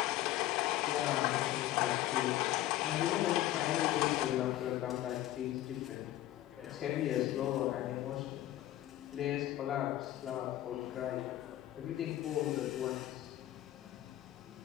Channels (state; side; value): quieter; right; 14.4 dB